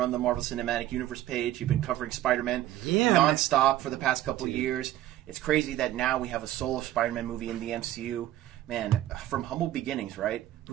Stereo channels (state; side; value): quieter; left; 13.7 dB